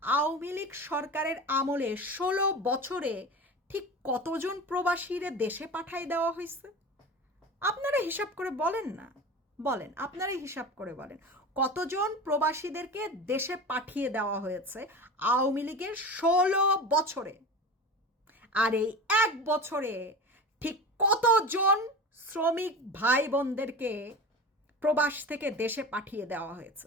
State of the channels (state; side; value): normal; both; correlation 0.31